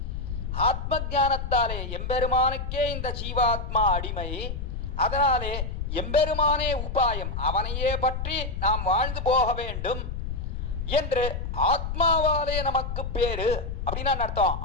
ஆத்ம ஞானத்தாலே எம்பெருமானுக்கே இந்த ஜீவாத்மா அடிமை, அதனாலே எம்பெருமானே உபாயம், அவனையே பற்றி நாம் வாழ்ந்து போக வேண்டும் என்று ஆத்மாவாலே நமக்கு பேரு அப்படின்னா அர்த்தம்.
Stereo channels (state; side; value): noise; left; rumble, 4 dB below the sound